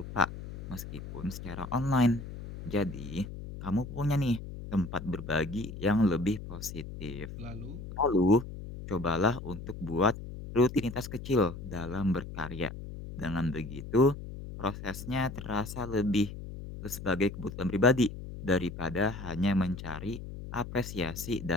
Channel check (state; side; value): noise; left; hum, 10 dB below the sound